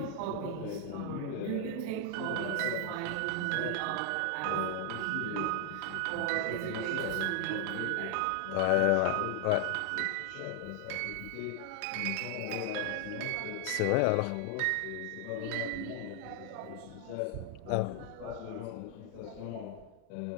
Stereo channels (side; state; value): both; different; correlation 0.00